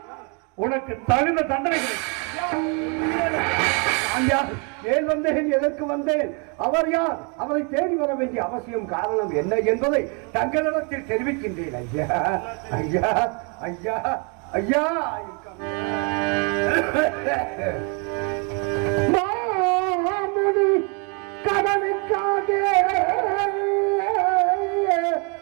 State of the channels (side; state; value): left; quieter; 35.3 dB